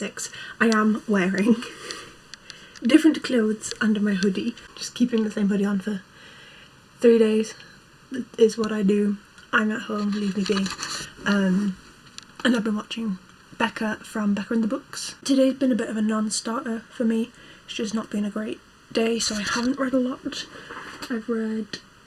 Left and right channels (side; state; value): both; identical; correlation 1.00